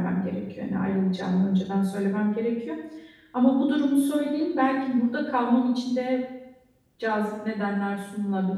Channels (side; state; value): both; identical; correlation 1.00